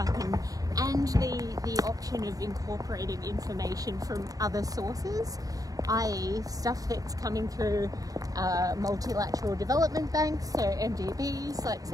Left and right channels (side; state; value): left; late; 0.18 ms